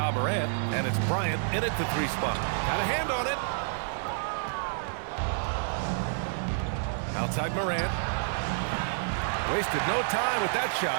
Morant, and it's Bryant in at the 3 spot. Got a hand on it. Outside Morant. Wasted no time with that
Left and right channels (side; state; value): left; silent; digital silence